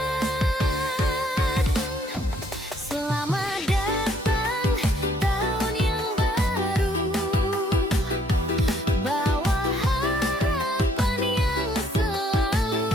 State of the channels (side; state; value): both; normal; correlation 0.65